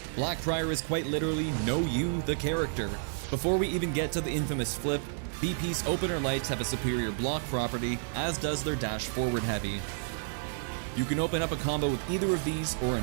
Black Prior is quite literally Know You, the character. Before we even get to the infamous flip, BP's opener lights have a superior block property, as does their dash forward heavy. You can open up a combo with either of these or a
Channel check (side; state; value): left; silent; 57 dB below the other